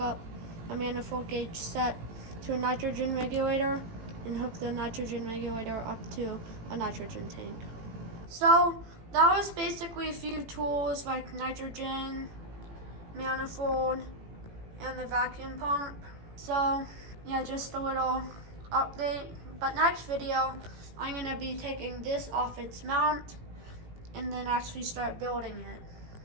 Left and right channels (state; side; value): late; left; 18 ms